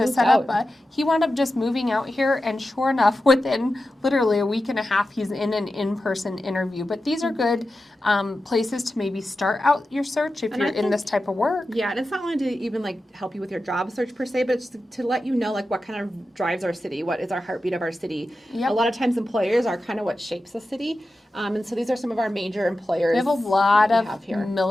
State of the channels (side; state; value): both; normal; correlation 0.92